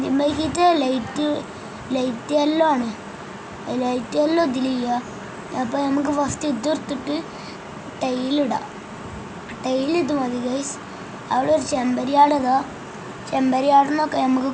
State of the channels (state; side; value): identical; both; correlation 1.00